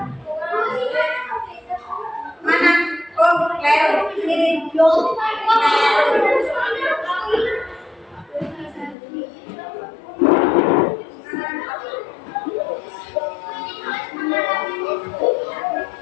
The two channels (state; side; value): drops out; right; at 9.0 s